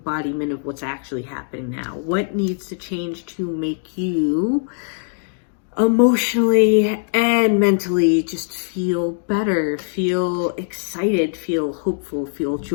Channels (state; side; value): silent; right; digital silence